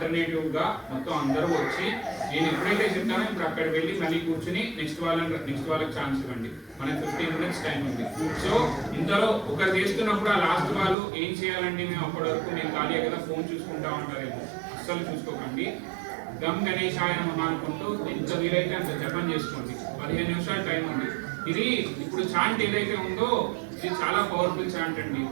గా మొత్తం అందరూ వచ్చి నేను ఎప్పుడైతే చెప్తానో ఇప్పుడు అక్కడ వెళ్ళి మళ్ళీ కూర్చుని నెక్స్ట్ వాళ్ళకి ఛాన్స్ ఇవ్వండి. మనకి 15 minutes టైం ఉంది. సో ఇంతలో ఒకరు చేస్తున్నప్పుడు ఆ లాస్ట్ వాళ్ళు ఏం చేయాలండి, మేము అప్పటి వరకు మేము ఖాళీ కదా ఫోన్ చూసుకుంటా ఉంటారేమో, అస్సలు చూసుకోకండి. గమ్ గణేశాయ నమః అనుకుంటూ ఎంత వీలైతే అంత జపం చేసుకోండి. 15 నిమిషాలు టైం ఉంది. ఇది ఇప్పుడు చాంట్ ఏదైతే ఉందో ఇది చాలా పవర్ఫుల్ చాంట్ అండి.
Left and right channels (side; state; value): left; drops out; at 11.0 s